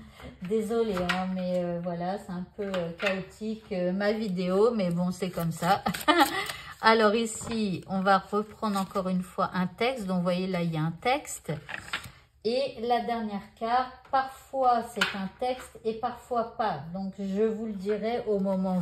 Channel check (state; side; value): identical; both; correlation 1.00